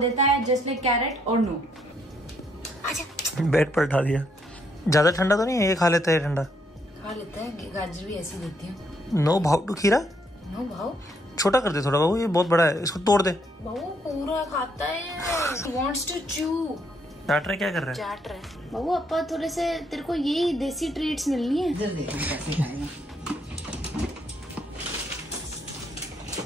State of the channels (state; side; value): normal; both; correlation 0.73